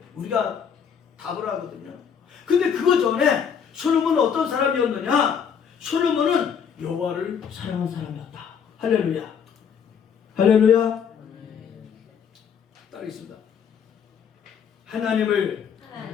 우리가 답을 하거든요. 근데 그거 전에 솔로몬은 어떤 사람이었느냐? 솔로몬은 여호와를 사랑한 사람이었다. 할렐루야. 할렐루야. 따르겠습니다. 하나님을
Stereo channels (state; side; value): quieter; right; 7.3 dB